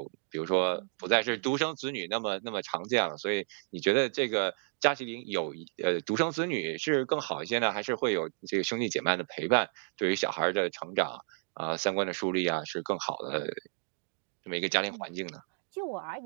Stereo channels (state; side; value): silent; left; digital silence